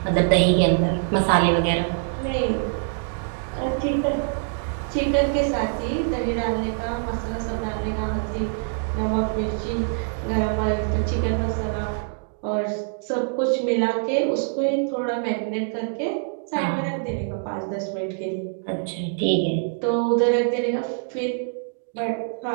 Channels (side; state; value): left; silent; digital silence